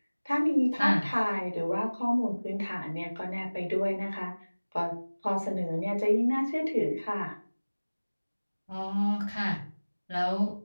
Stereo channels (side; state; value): both; inverted; correlation -1.00